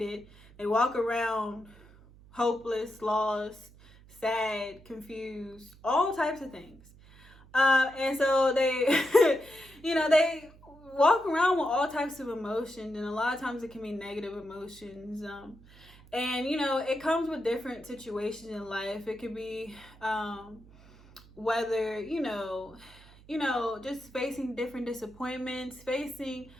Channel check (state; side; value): noise; right; hum, 23 dB below the sound